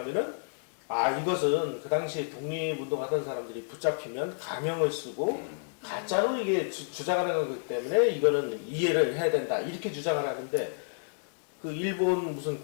이것은 그 당시에 독립운동하던 사람들이 붙잡히면 가명을 쓰고 가짜로 이게 주장하는 거기 때문에 이거는 이해를 해야 된다 이렇게 주장을 하는데 그 일본 무슨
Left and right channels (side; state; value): right; silent; digital silence